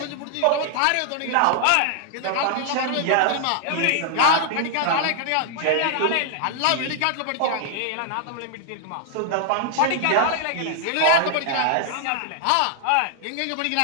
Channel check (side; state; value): both; different; correlation 0.00